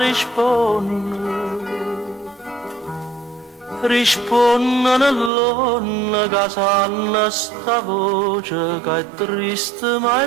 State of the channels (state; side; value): drops out; left; at 5.3 s